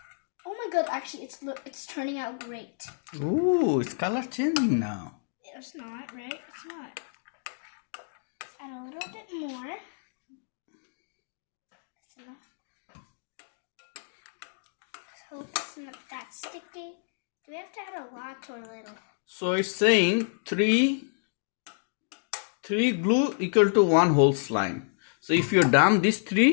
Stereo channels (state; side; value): silent; right; digital silence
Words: Oh my god, actually it's turning out great. Ooh, it's color changing now. It's not, right? It's not. Let's add a little bit more. That's enough. Let's hope it's not that sticky. Do we have to add a lot or a little? So it's saying three glue equal to 1 whole slime. So if you dump these 3,